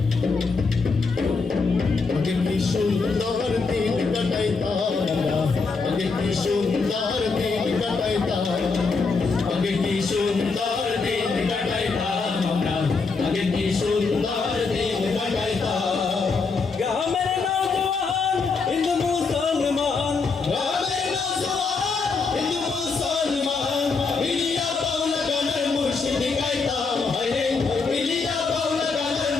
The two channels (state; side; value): quieter; right; 4.5 dB